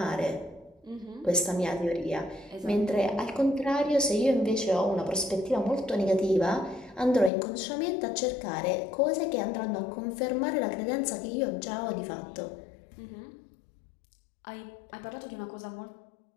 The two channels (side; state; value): right; drops out; at 7.3 s